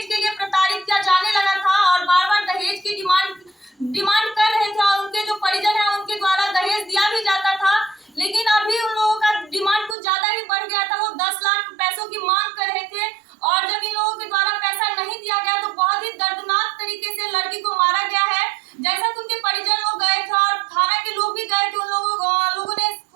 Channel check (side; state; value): left; drops out; at 10.0 s